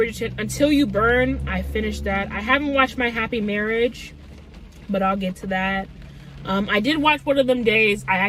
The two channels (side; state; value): both; identical; correlation 1.00